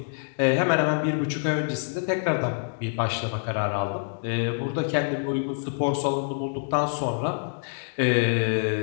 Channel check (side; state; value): right; silent; digital silence